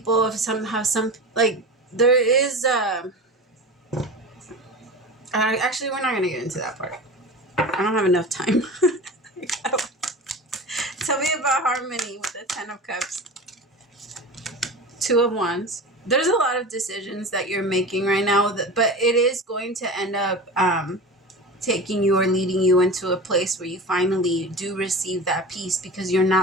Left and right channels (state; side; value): normal; both; correlation 0.31